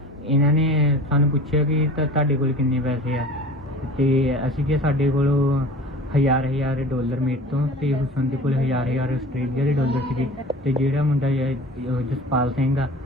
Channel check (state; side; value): normal; both; correlation 0.39